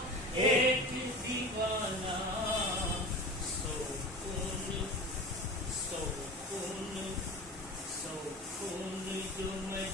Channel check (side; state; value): both; normal; correlation 0.32